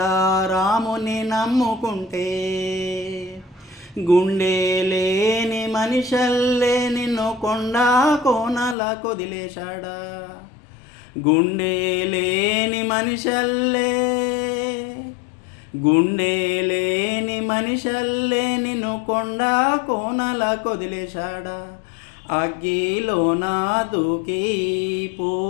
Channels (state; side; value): drops out; right; at 8.8 s